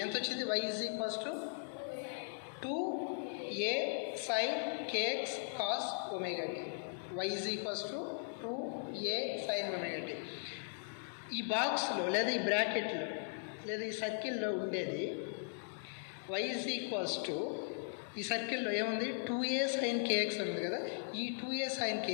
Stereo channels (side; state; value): right; silent; digital silence